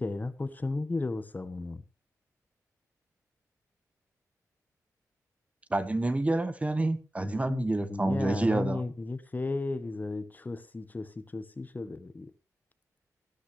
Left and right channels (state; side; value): normal; both; correlation 0.94